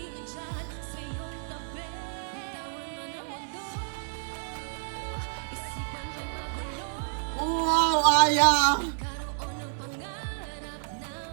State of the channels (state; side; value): silent; left; 57 dB below the other